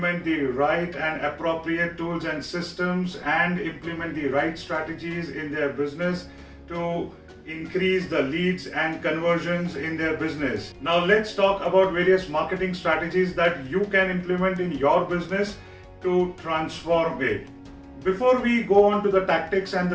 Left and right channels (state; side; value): identical; both; correlation 1.00